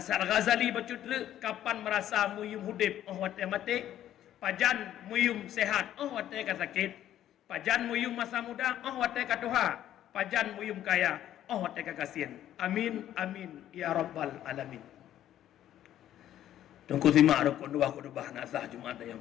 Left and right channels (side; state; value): right; quieter; 11.8 dB